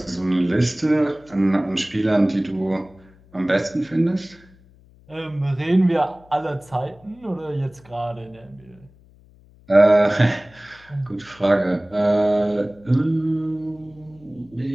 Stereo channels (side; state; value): left; noise; hum, 27 dB below the sound